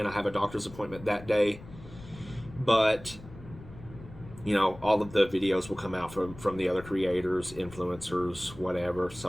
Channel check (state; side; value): noise; left; rumble, 17 dB below the sound